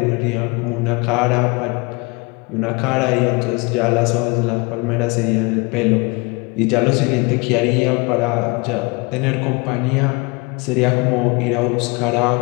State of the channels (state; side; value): quieter; right; 27.6 dB